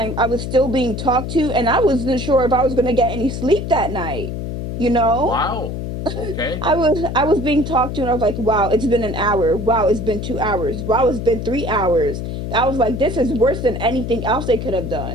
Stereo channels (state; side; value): noise; left; hum, 5 dB below the sound